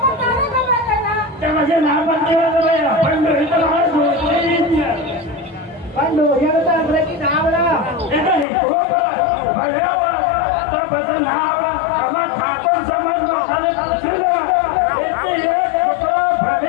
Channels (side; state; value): right; drops out; at 8.5 s